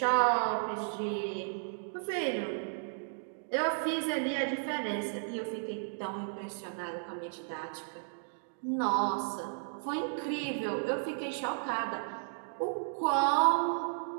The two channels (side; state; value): left; silent; digital silence